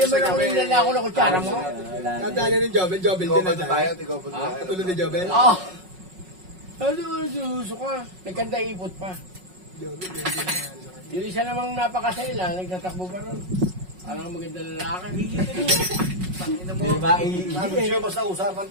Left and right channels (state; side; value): late; left; 5.4 ms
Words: mo lang nilala ako ng kutsara mo? Nadali ng Jobel din Tigopad na na tayo. tayo, tigopad na tayo. Katulad ni Jobel. Oo. Ano, suso ka? Nagkanda ipot pa. Yung isa namang napakasela, nagtatakbo pa ron. Alam maganda lalaki. Di ba? Sabi siya, basta usapan